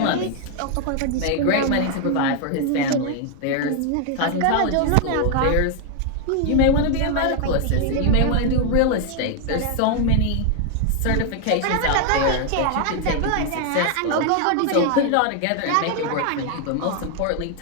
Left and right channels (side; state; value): both; different; correlation 0.00